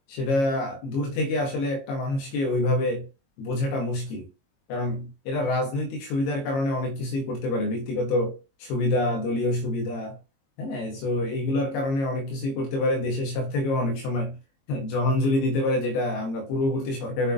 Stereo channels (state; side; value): late; right; 22 ms